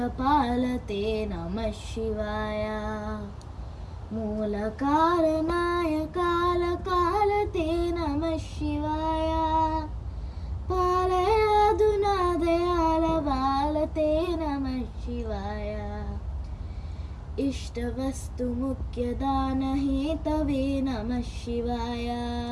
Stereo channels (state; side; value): identical; both; correlation 1.00